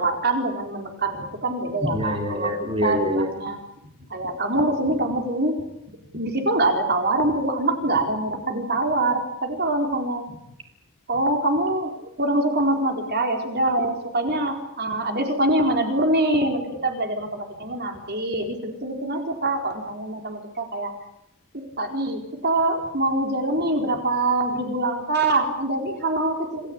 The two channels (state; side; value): normal; both; correlation -0.13